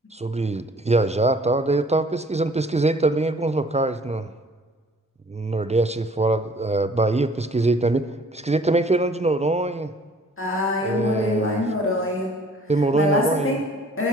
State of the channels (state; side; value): normal; both; correlation 0.55